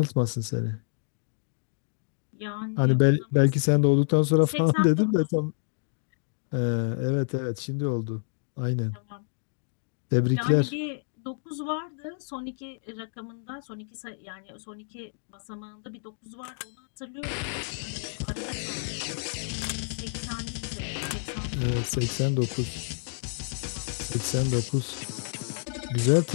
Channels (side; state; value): right; silent; digital silence